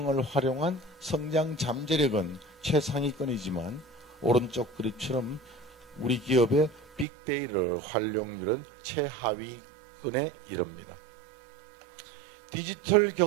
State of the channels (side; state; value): left; drops out; at 7.1 s